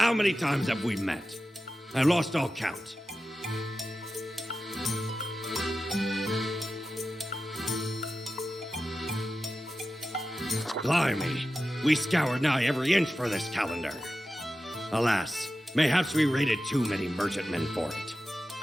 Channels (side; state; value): both; normal; correlation 0.92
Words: many times have we met? I lost all count. Blimey, we scoured nigh every inch for this calendar. Alas, mayhaps we raided too many merchantmen for it.